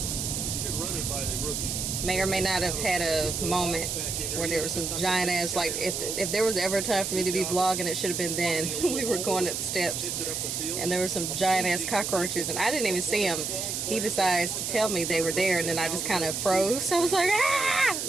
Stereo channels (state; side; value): noise; right; hiss, 2 dB below the sound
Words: May or may not have had a moment where there was some giant ass, like if there was ever a time for me to be vlogging, it should have been then. We were going up the steps and there were some giant ass cockroaches and I didn't even see them. He decides to tell me they were there and then I just kind of froze. I was like, ah!